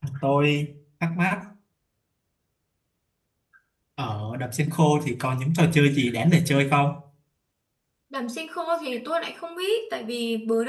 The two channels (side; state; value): both; identical; correlation 1.00